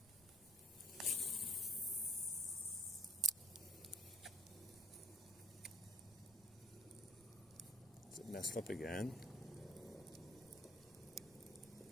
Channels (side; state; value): right; noise; rumble, 25 dB below the sound